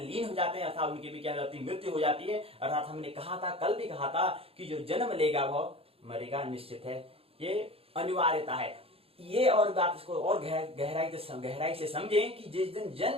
लीन हो जाते हैं, अर्थात उनकी भी क्या हो जाती है, मृत्यु हो जाती है। अर्थात हमने कहा था, कल भी कहा था कि जो जन्म लेगा वह मरेगा, निश्चित है, ये अनिवार्यता है। ये और बात इसको और गहराई से समझें कि जिस दिन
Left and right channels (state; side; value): late; left; 0.28 ms